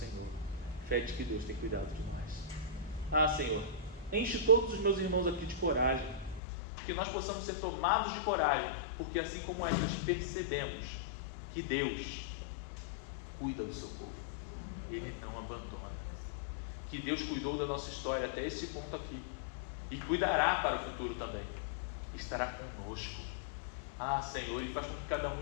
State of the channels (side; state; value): right; drops out; at 6.4 s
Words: Fé de que Deus tem cuidado de nós. Senhor, enche todos os meus irmãos aqui de coragem, que nós possamos ser tomados de coragem, porque assim como nós percebemos que Deus cuida do seu povo, Ele não abandona, que Deus cuidou da nossa história até esse ponto aqui, e cuidará para o futuro também, estará conosco. Senhor, e faz com que cada um